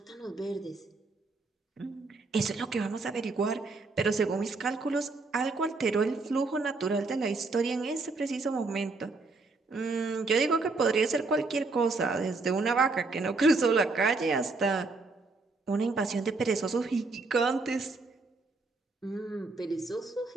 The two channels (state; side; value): quieter; left; 3.7 dB